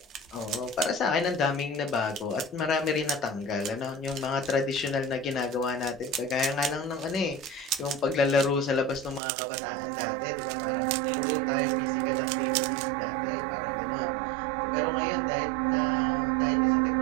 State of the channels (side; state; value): left; drops out; at 9.2 s